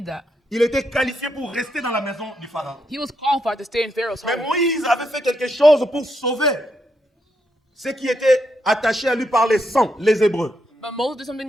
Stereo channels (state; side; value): normal; both; correlation 0.80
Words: that. Il était qualifié pour rester dans la maison du pharaon. He was qualified to stay in Pharaoh's Mais home. Moïse avait fait quelque chose pour sauver ceux qui étaient attachés à lui par les sangs, les Hébreux. But Moses did something